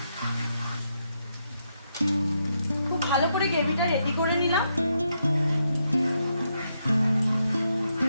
খুব ভালো করে গ্রেভিটা রেডি করে নিলাম।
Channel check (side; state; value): both; inverted; correlation -0.80